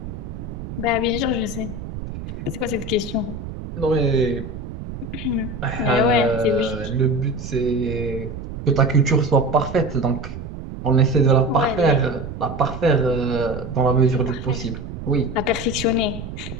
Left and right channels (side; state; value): right; noise; rumble, 9 dB below the sound